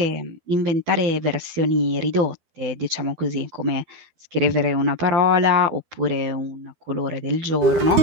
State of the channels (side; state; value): left; late; 12 ms